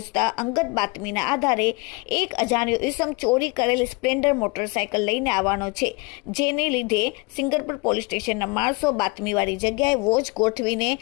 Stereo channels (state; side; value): quieter; right; 27.2 dB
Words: અંગત બાતમીના આધારે એક અજાણ્યો ઇસમ ચોરી કરેલ સ્પ્લેન્ડર મોટરસાયકલ લઈને આવવાનો છે, જેને લીધે સિંગરપુર પોલીસ સ્ટેશનના માણસો બાતમીવાળી જગ્યાએ વોચ ગોઠવીને